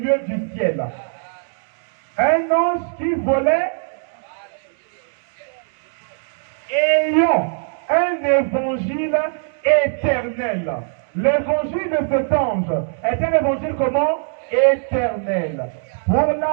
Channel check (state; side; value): silent; left; 65 dB below the other